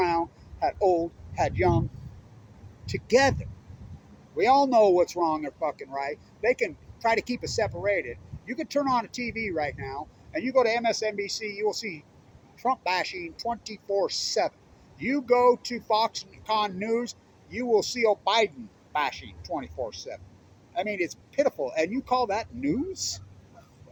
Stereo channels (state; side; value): identical; both; correlation 1.00